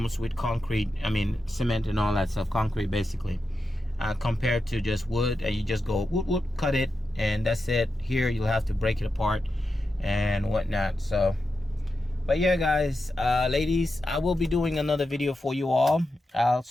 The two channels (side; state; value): both; normal; correlation 0.89